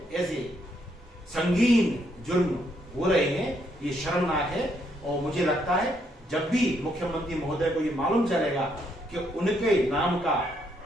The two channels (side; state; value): both; normal; correlation 0.74